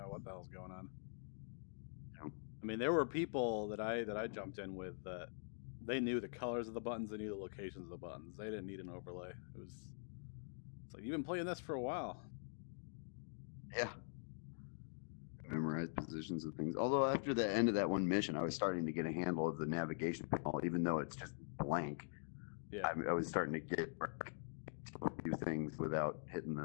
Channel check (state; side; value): silent; right; digital silence